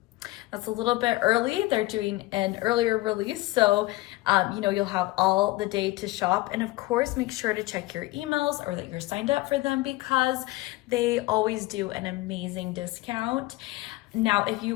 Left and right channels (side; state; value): right; quieter; 19.5 dB